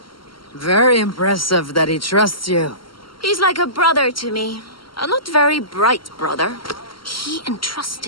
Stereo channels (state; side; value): late; right; 0.73 ms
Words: Very impressive that he trusts you. He's like a brother to me. A not very bright brother. He